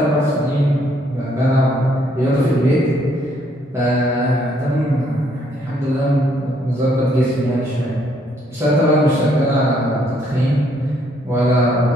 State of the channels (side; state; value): both; normal; correlation 0.69